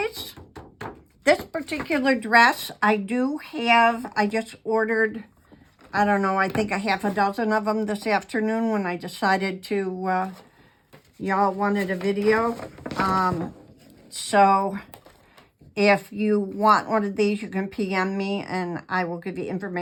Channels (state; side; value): identical; both; correlation 1.00